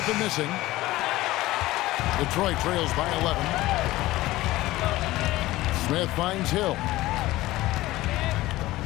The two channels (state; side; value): quieter; right; 17.5 dB